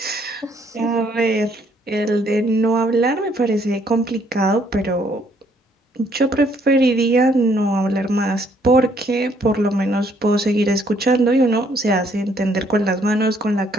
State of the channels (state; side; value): normal; both; correlation 0.67